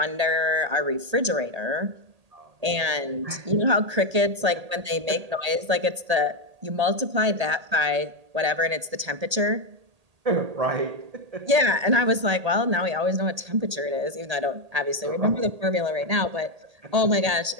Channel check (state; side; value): late; left; 1.8 ms